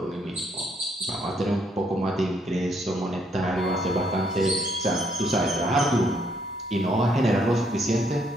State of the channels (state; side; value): normal; both; correlation 0.71